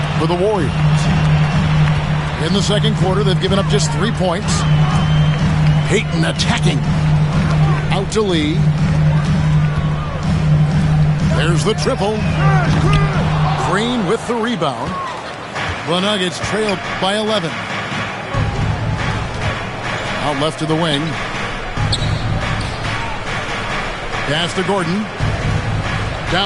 for the Warriors. In the second quarter, they've given up just 3 points. Payton attacking. Out to Lee. There's the triple. Green with the rebound. The Nuggets trailed by 11. Out left to the wing. Pass to Gordon.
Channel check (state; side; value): identical; both; correlation 1.00